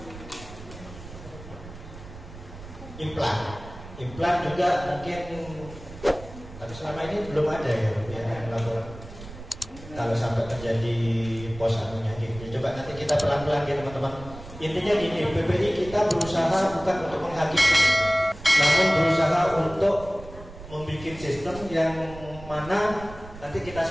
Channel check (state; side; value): noise; right; rumble, 15 dB below the sound